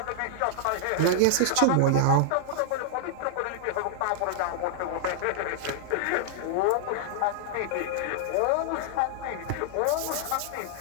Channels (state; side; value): different; both; correlation -0.01